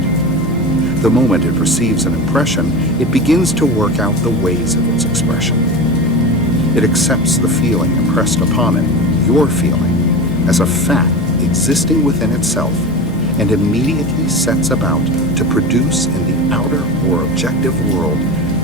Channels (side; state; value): left; noise; hum, 11 dB below the sound